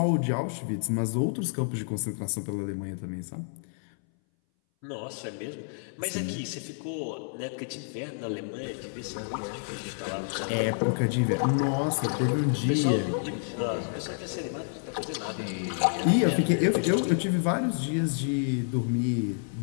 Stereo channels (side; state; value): right; silent; 59 dB below the other